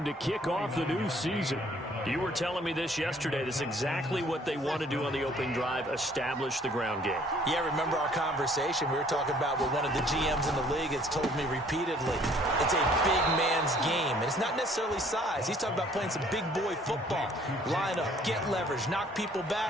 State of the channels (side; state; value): both; normal; correlation 0.58